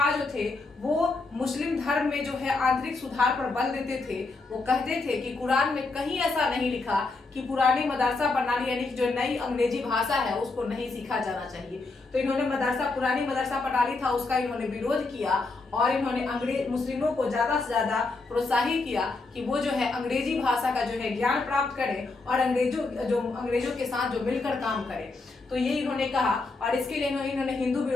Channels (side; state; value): right; quieter; 3.6 dB